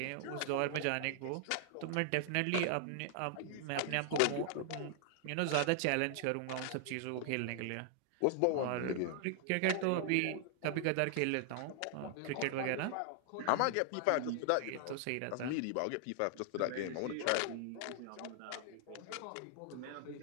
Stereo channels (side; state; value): both; different; correlation 0.00